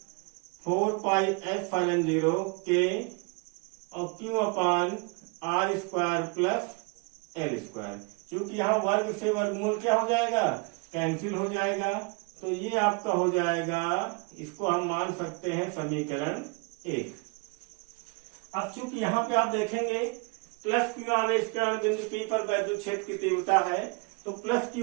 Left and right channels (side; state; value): left; quieter; 31.1 dB